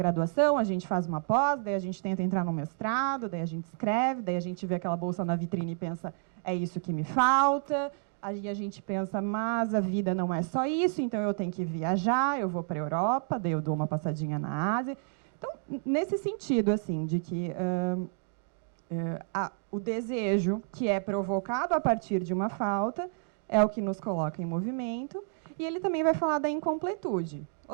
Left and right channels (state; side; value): silent; left; 58 dB below the other